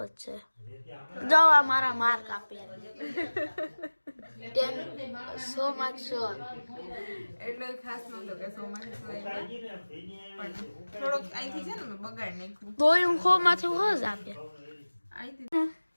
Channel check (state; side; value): inverted; both; correlation -1.00